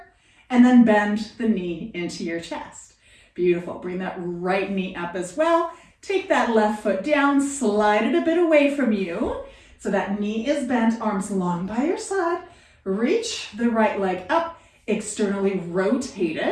and then bend the knee into your chest. Beautiful. Bring that right knee up as well. Take that left foot down, slide it a bit away from you. So that knee is bent, arms long by your side. Reach the right leg up, externally rotate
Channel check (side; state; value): both; identical; correlation 1.00